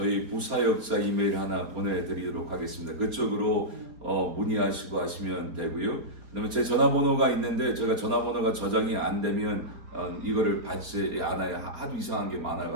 부사역자 이메일 하나 보내드리도록 하겠습니다. 그쪽으로 문의하시고 하시면 되고요. 그다음에 제 전화번호가 있는데 제가 전화번호가 저장이 안 되면 이거를 받지 않아요. 하도 이상한 게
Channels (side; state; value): left; late; 4.3 ms